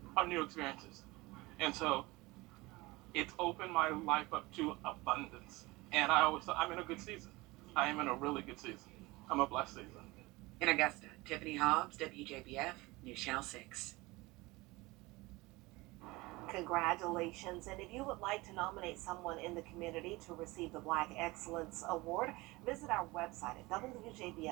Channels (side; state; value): left; quieter; 22.0 dB